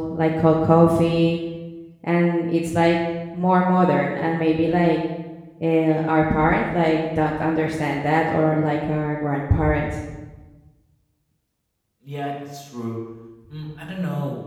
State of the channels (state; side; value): identical; both; correlation 1.00